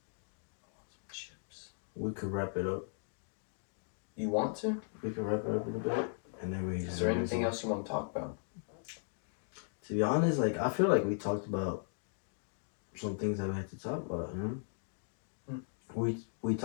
some chips. we could wrap it up. You want to? We could wrap it up in a bit. And then we Is there anything else you want to talk about? To be honest, like I feel like we talked about some things that we had to talk about, you know? We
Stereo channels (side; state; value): right; silent; digital silence